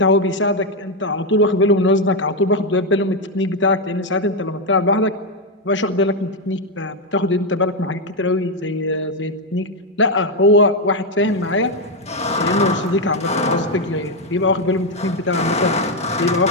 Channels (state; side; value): normal; both; correlation 0.04